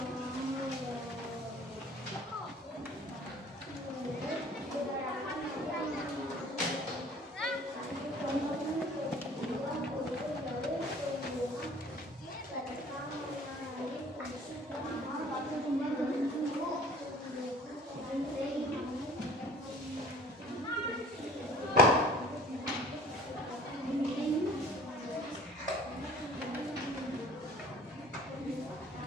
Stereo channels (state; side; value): normal; both; correlation 0.49